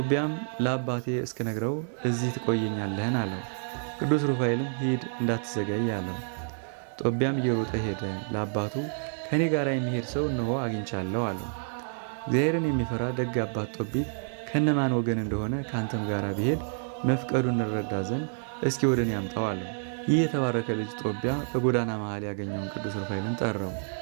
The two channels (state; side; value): silent; left; digital silence